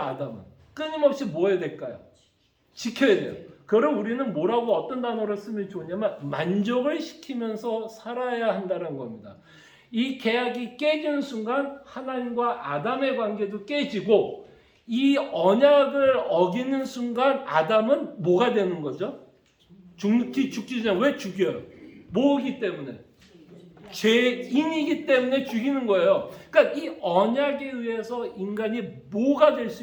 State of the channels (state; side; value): identical; both; correlation 1.00